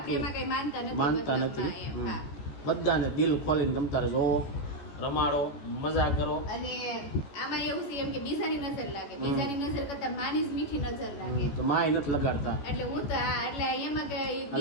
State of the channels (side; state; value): right; late; 14 ms